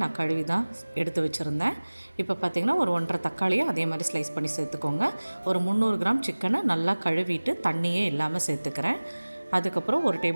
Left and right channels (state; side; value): inverted; both; correlation -1.00